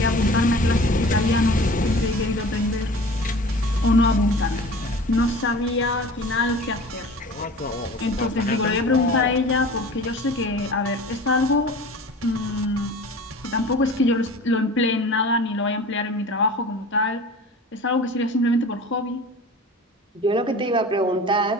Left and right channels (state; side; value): normal; both; correlation 0.40